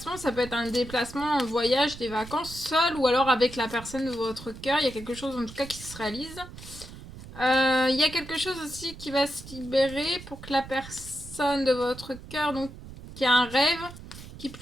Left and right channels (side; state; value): right; noise; rumble, 15 dB below the sound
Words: ça peut être un déplacement, un voyage, des vacances, seul ou alors avec la personne de votre cœur. Il y a quelque chose en tout cas qui se réalise. Il y a quelque chose aussi qui va se libérer pour que la personne de votre cœur, donc qui a un rêve, qui